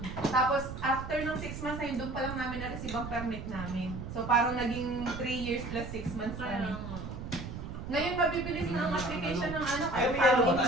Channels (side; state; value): right; noise; rumble, 8 dB below the sound